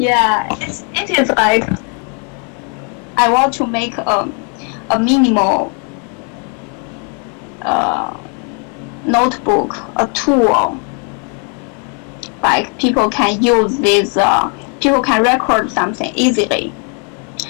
it is like I want to make a minimal notebook, a tool. Like people can use this, people can record something easily.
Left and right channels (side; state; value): right; quieter; 39.1 dB